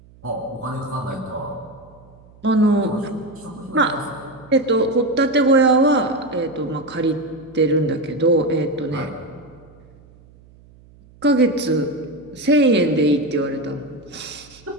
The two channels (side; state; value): right; noise; hum, 26 dB below the sound